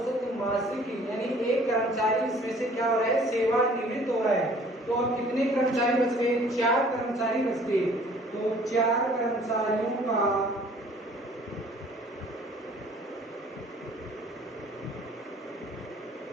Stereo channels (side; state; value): both; normal; correlation 0.54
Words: मासिक, यानी एक कर्मचारी इसमें से क्या हो रहा है, सेवानिवृत्त हो रहा है। तो अब कितने कर्मचारी बच गए, 4 कर्मचारी बच गए। तो 4 कर्मचारियों का